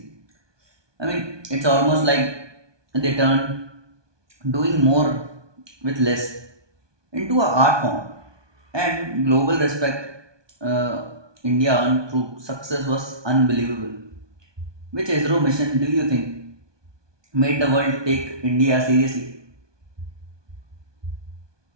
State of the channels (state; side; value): late; left; 1.2 ms